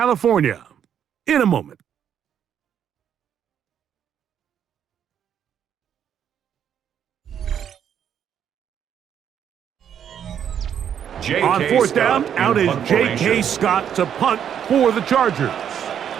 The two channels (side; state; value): left; quieter; 8.9 dB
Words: in a moment. On 4th down, out is J.K. Scott to punt for the Chargers.